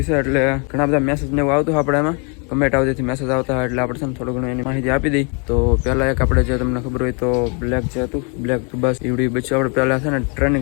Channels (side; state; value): right; quieter; 35.9 dB